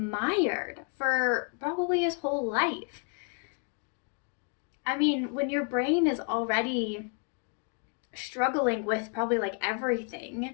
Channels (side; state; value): right; quieter; 39.7 dB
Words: for probably his whole life. I mean, when your brain is already struggling with probably like